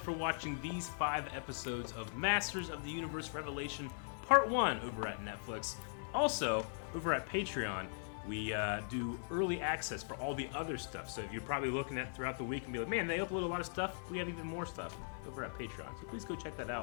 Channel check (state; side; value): silent; right; 51 dB below the other